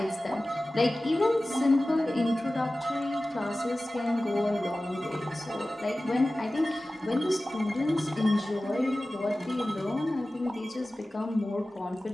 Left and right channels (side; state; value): both; normal; correlation 0.96